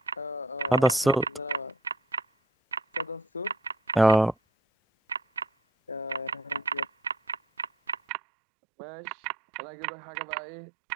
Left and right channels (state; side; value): drops out; left; at 8.0 s